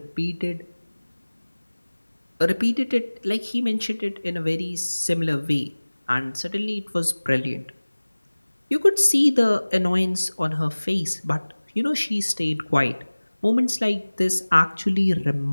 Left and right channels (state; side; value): inverted; both; correlation -1.00